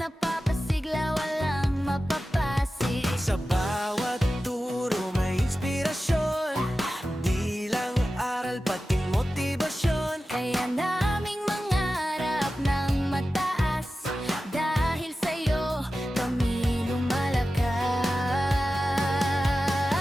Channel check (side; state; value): both; normal; correlation 0.94